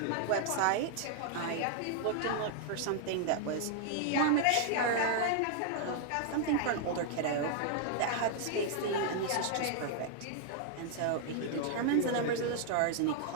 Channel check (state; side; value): different; both; correlation 0.00